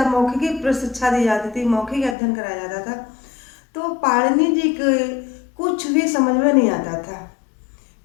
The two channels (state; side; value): drops out; right; at 2.1 s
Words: मौखिक शिक्षा दी जाती थी, मौखिक अध्ययन कराया जाता था। तो पाणिनि जी के कुछ भी समझ में नहीं आता था।